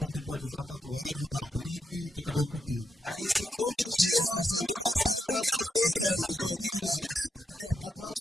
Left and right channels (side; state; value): both; normal; correlation 0.82